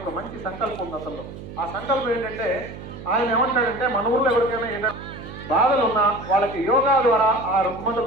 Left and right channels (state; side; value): noise; right; hum, 13 dB below the sound